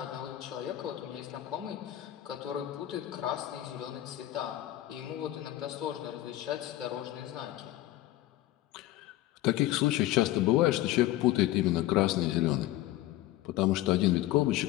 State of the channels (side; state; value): right; quieter; 15.2 dB